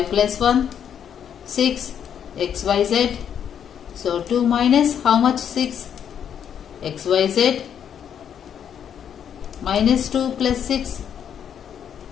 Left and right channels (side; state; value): right; quieter; 8.6 dB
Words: plus 1. 6. X, y, z. So 2 minus how much? 6. X, y, z. Minus 2 plus 6.